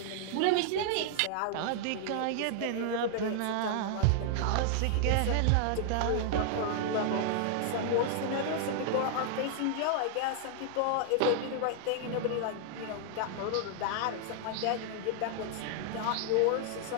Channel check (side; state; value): both; different; correlation -0.01